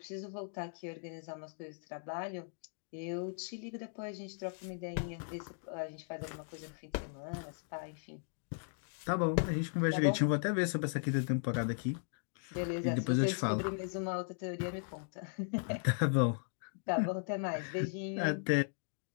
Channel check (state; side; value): silent; right; digital silence